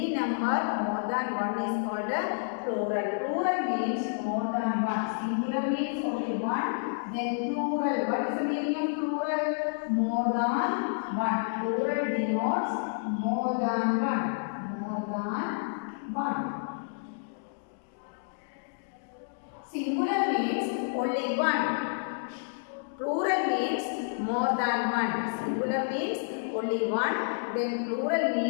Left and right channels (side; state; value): right; silent; digital silence